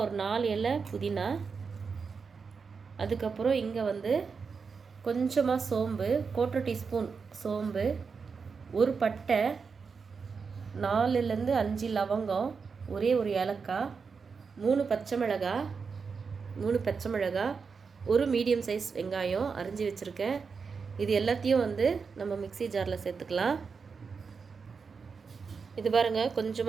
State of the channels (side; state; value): left; quieter; 5.4 dB